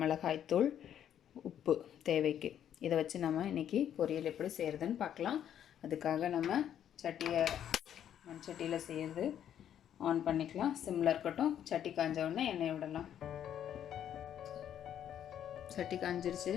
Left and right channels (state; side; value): quieter; right; 10.0 dB